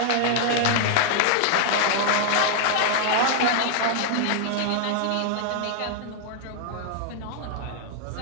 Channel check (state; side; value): different; both; correlation 0.00